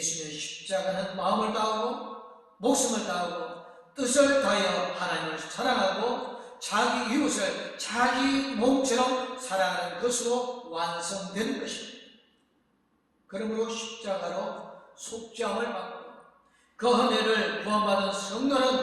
십자가는 마음을 다하고 목숨을 다하고 뜻을 다하여 하나님을 사랑하고 자기 이웃을 자기 몸처럼 사랑하는 것으로 완성되는 것입니다. 그러므로 십자가로 속죄함을 받고 그 은혜를 구원받은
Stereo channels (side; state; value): both; identical; correlation 1.00